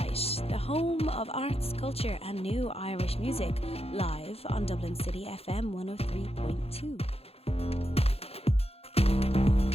the home of arts, culture and new Irish music, live on Dublin City FM 103.2.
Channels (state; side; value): late; right; 0.29 ms